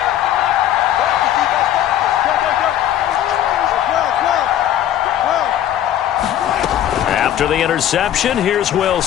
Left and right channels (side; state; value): right; quieter; 11.5 dB